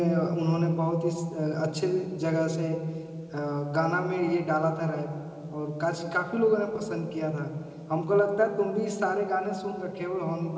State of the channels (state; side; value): identical; both; correlation 1.00